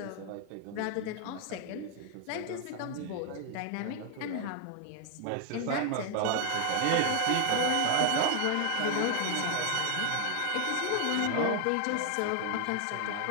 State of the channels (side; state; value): both; different; correlation 0.00